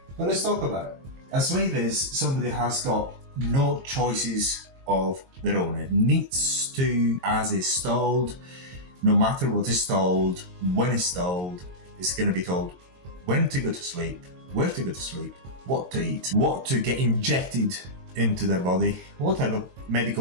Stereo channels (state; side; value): late; left; 22 ms